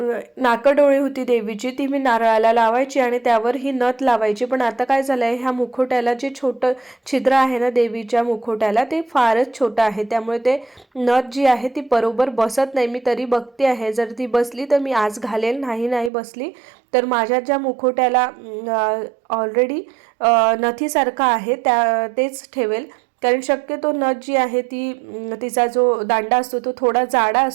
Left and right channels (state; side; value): drops out; left; at 16.1 s